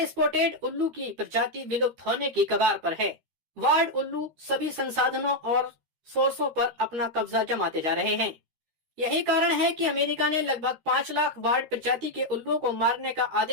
स्पॉटेड उल्लू की प्रजाति विलुप्त होने की कगार पर है। वार्ड उल्लू सभी संसाधनों और सोर्सों पर अपना कब्जा जमाते जा रहे हैं। यही कारण है कि अमेरिका ने लगभग 5 लाख वार्ड प्रजाति के उल्लुओं को मारने का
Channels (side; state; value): left; late; 13 ms